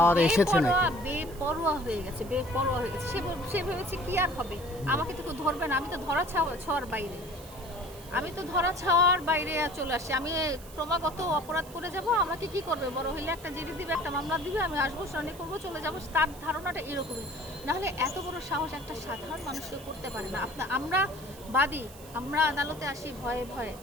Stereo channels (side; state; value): right; noise; hiss, 19 dB below the sound